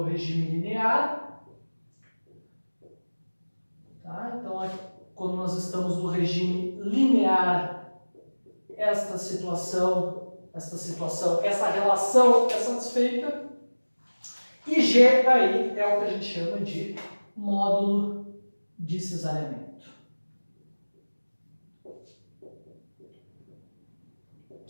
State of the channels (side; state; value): both; inverted; correlation -1.00